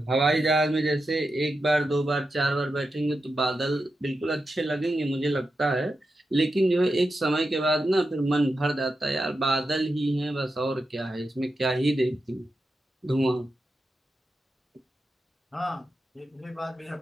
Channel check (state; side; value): normal; both; correlation 0.89